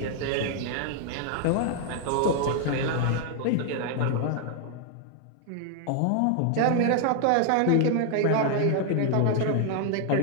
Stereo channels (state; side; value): different; both; correlation 0.00